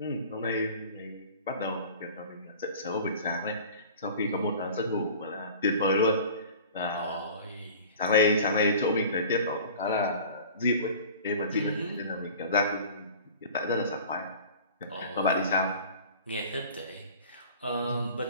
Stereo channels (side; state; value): both; inverted; correlation -0.42